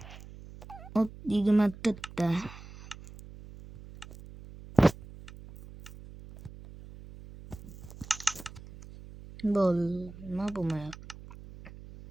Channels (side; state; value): right; noise; hum, 16 dB below the sound